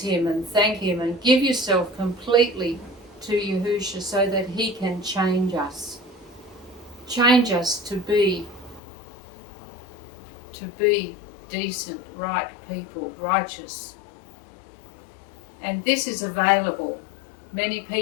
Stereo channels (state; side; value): drops out; right; at 8.8 s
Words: Him and thank Him and give yourself completely to Yahusha so that He can change us. Change us to be decent, right people, righteous. And this is available. Many